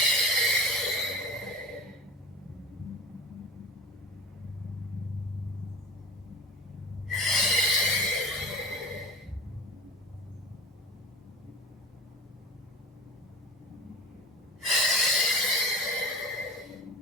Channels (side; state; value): both; normal; correlation 0.37